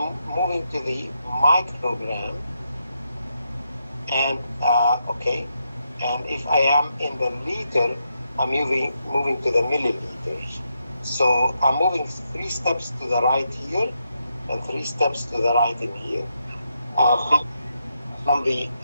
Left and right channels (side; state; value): both; inverted; correlation -0.82